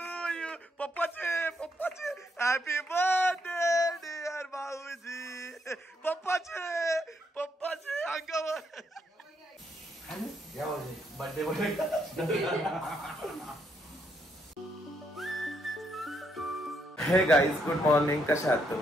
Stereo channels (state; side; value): normal; both; correlation 0.75